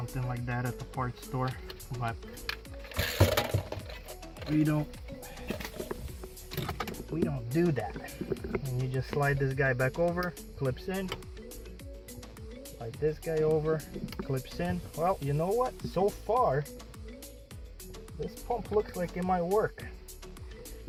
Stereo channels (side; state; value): both; identical; correlation 1.00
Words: like that at the parts store, but we don't do that. And you just slide this guy back over, clips in, slide this guy over, clips in. Well, you know what, so far this pump looks like it might work.